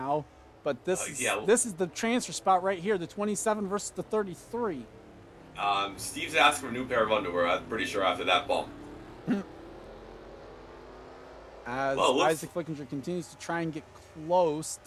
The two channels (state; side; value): identical; both; correlation 1.00